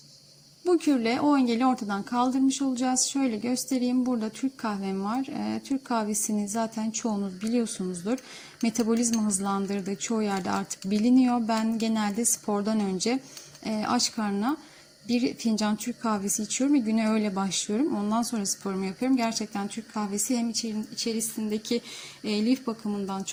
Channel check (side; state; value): both; identical; correlation 1.00